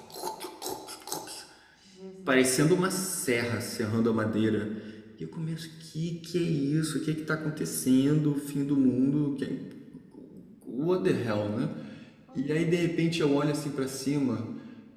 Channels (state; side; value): identical; both; correlation 1.00